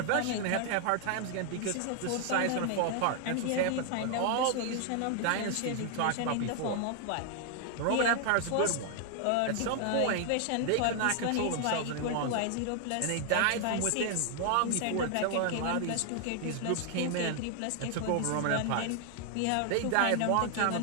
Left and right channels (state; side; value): different; both; correlation 0.00